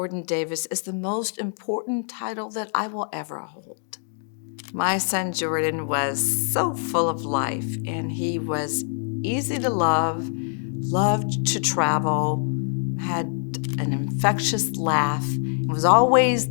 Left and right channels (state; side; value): silent; right; 62 dB below the other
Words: Davis is the most important title that I will ever hold. My son Jordan was so full of life, and he was easy to love, loved to travel, had an infectious laugh, and was always